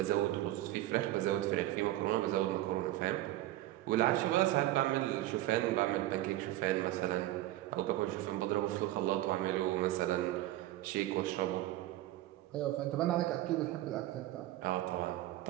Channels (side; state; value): left; quieter; 15.4 dB